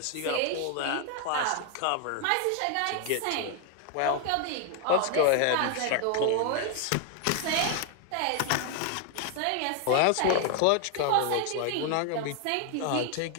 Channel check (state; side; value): different; both; correlation 0.00